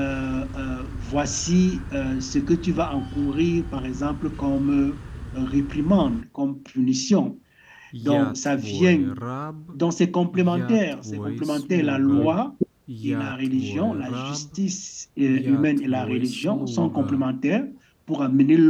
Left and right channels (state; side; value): identical; both; correlation 1.00